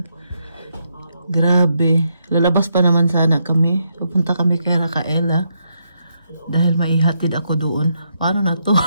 Grabe. Lalabas pa naman sana kami. Pupunta kami kay Racaela. Dahil maihatid ako doon. Paano na to?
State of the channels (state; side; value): inverted; both; correlation -0.79